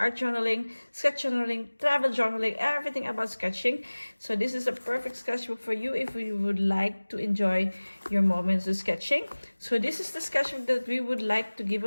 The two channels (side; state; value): both; inverted; correlation -1.00